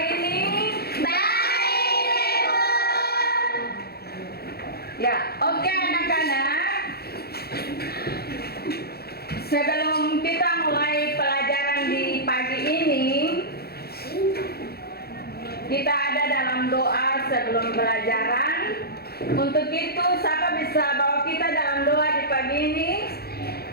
ini? Baik, Ibu. Ya, oke anak-anak. Sebelum kita mulai pelajaran di pagi ini, kita ada dalam doa sebelum pelajaran. Untuk itu, siapa bisa bawa kita dalam doa di pagi ini?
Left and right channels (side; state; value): right; late; 0.46 ms